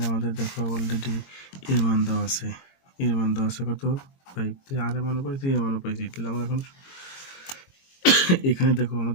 আমাদের দেখো অলরেডি এর মান দেওয়া আছে, কত 5। তাহলে আর এর মানও পাইছি, এর মানও পাইছি। তাহলে আমরা এখন এখানে দেখো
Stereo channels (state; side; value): late; right; 22 ms